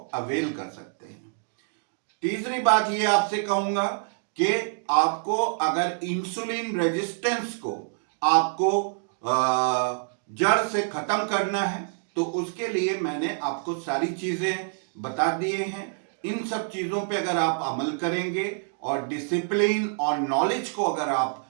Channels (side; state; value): left; silent; digital silence